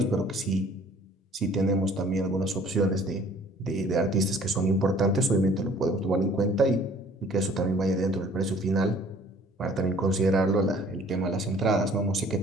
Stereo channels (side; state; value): both; normal; correlation 0.54